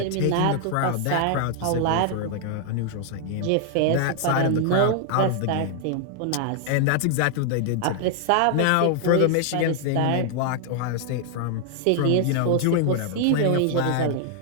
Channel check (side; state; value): both; different; correlation 0.00